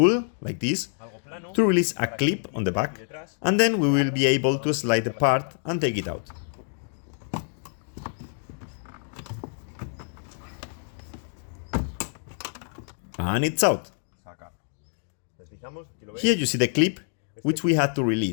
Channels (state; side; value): silent; right; 56 dB below the other